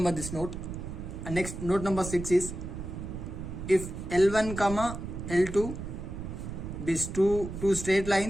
this note. And next, note number 6 is, if L1 comma L2 be two straight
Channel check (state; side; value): noise; right; rumble, 8 dB below the sound